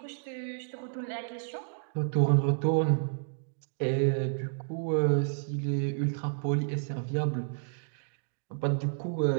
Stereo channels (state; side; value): silent; left; digital silence